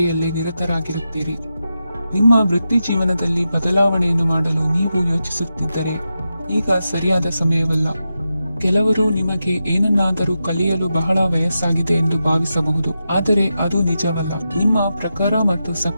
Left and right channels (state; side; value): inverted; both; correlation -0.89